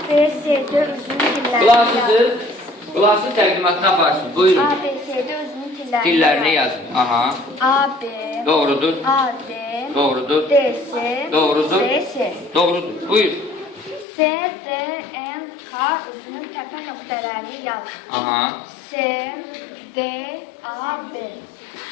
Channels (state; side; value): drops out; right; at 14.1 s